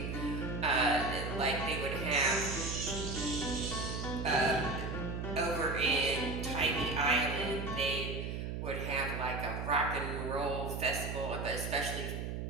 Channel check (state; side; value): noise; right; hum, 4 dB below the sound